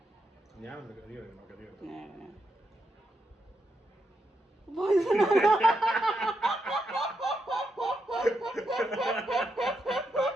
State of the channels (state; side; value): normal; both; correlation 0.83